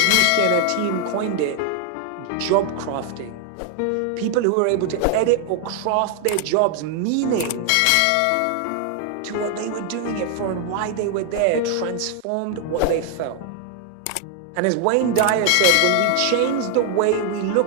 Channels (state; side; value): different; both; correlation 0.00